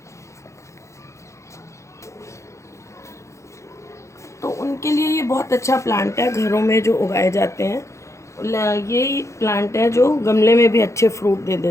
तो उनके लिए ये बहुत अच्छा प्लांट है, घरों में जो उगाए जाते हैं। ये प्लांट है जो गमले में भी अच्छे फ्रूट दे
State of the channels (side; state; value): right; late; 0.14 ms